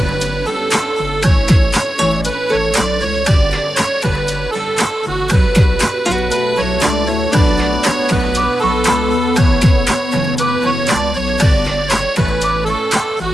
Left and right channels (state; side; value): normal; both; correlation 0.90